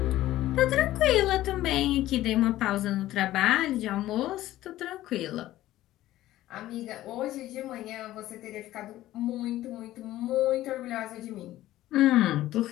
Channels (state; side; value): quieter; right; 14.9 dB